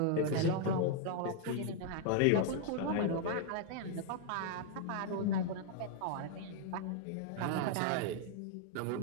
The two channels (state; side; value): different; both; correlation 0.00